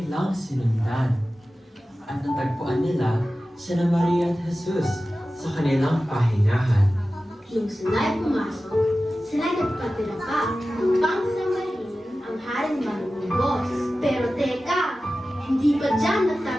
sinundan. At natagpuan nila sina Maria at Jesus sa kanilang pahingahan. Nung sila'y pumasok, sila'y nagpatira pa upang samahin ang haring marunggos. Pero teka, hindi pa dyan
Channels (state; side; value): normal; both; correlation 0.95